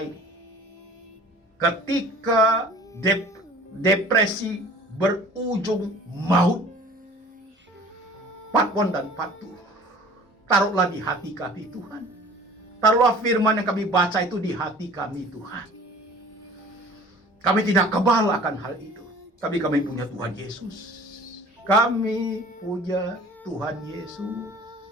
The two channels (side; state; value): both; normal; correlation 0.47